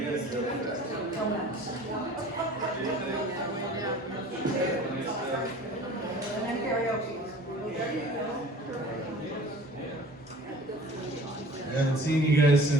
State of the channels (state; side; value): normal; both; correlation 0.45